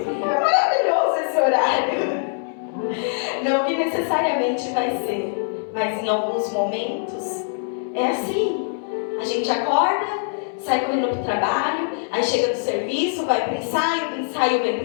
maravilhoso esse horário. Não que necessariamente vai ser, mas em alguns momentos é assim. A gente acorda, sai correndo pro trabalho, aí chega do serviço, vai pro ensaio, do ensaio vem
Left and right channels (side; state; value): right; silent; digital silence